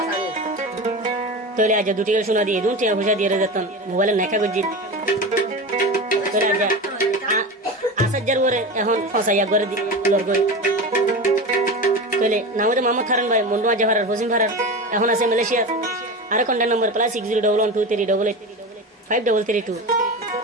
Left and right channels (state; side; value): normal; both; correlation 0.26